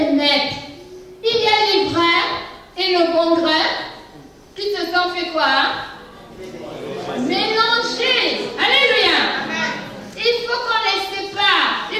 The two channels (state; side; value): identical; both; correlation 1.00